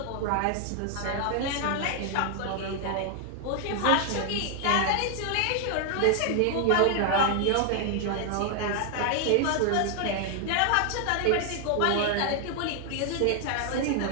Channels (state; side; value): different; both; correlation 0.00